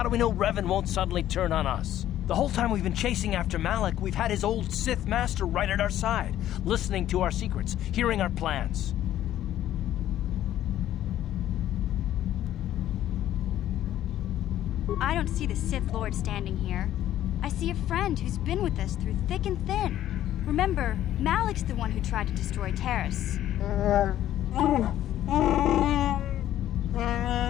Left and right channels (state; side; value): quieter; right; 12.4 dB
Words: do we know Revan won't suddenly turn on us? The whole time we've been chasing after Malak, we've had his old Sith master right at our side, listening to our secrets, hearing our plans. I don't see the Sith Lord standing here. I see a friend who's been with us through thick and thin. Remember, Malik's the one who tried to destroy Terrace.